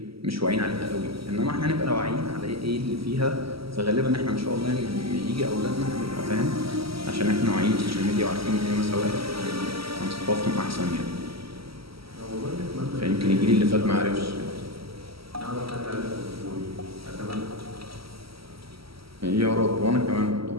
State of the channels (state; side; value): late; left; 0.75 ms